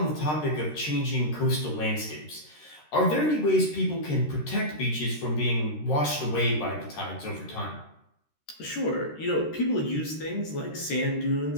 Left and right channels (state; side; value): late; right; 13 ms